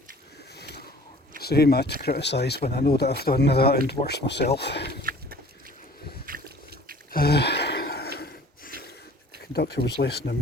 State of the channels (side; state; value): both; normal; correlation 0.49